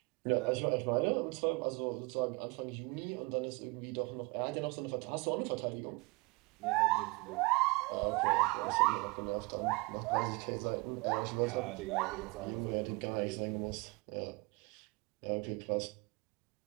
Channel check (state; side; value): quieter; left; 26.4 dB